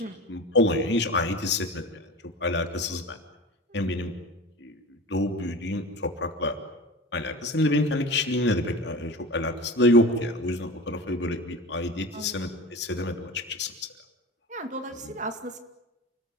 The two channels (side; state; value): both; normal; correlation 0.32